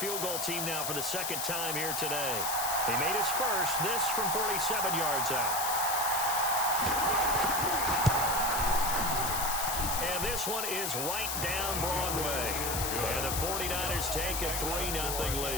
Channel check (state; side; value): noise; left; hiss, 1 dB below the sound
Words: goal team now for the 2nd time here today. He made his first, this from 47 yards out. And this one is right down Broadway. And the 49ers take a 3-0